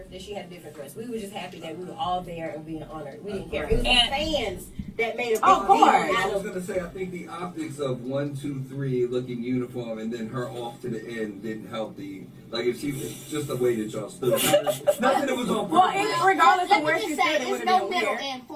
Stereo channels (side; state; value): both; identical; correlation 1.00